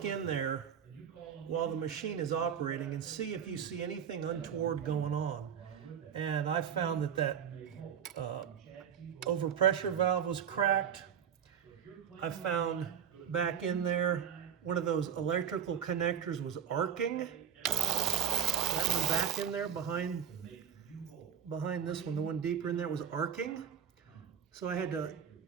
in there while the machine is operating and see if you see anything untoward going on. And I found that overpressure valve was cracked. I found back in there one of those electrical connectors was arcing. That one back in there behind this one, the one deeper in there, was arcing. So I had to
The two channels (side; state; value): left; quieter; 8.3 dB